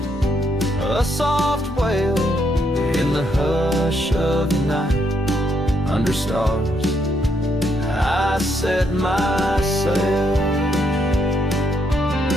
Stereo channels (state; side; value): normal; both; correlation 0.75